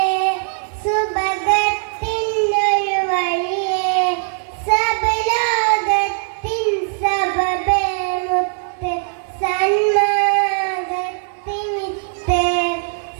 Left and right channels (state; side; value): silent; left; digital silence